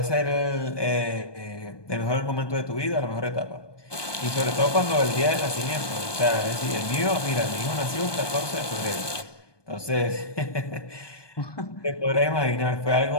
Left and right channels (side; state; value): right; late; 1.2 ms